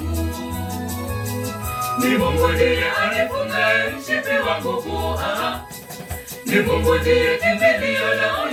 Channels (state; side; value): identical; both; correlation 1.00